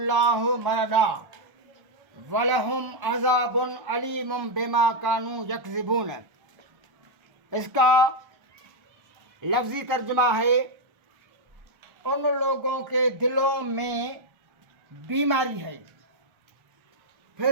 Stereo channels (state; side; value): late; left; 1.3 ms